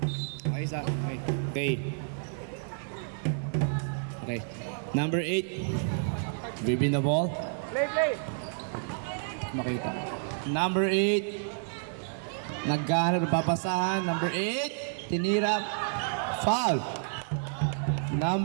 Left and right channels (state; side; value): silent; left; 58 dB below the other